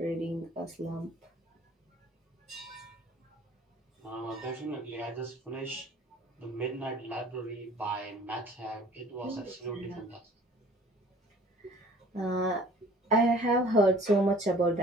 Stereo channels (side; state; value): both; normal; correlation 0.50